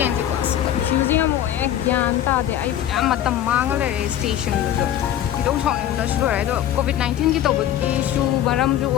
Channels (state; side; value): quieter; right; 11.4 dB